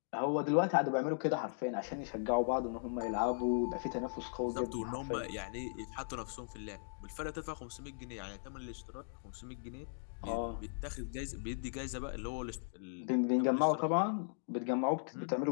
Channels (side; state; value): right; silent; digital silence